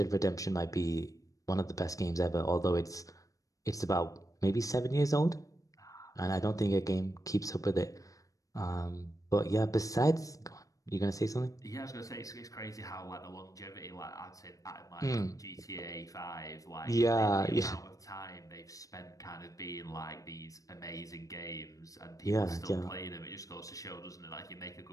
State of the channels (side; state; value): right; late; 0.16 ms